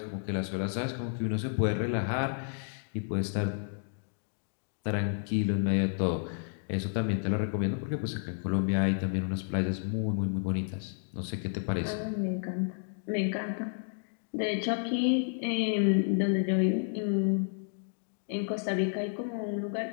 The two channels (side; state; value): right; silent; digital silence